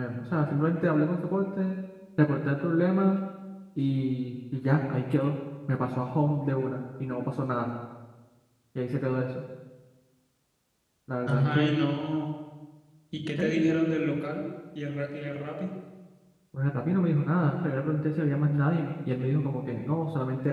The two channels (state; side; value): identical; both; correlation 1.00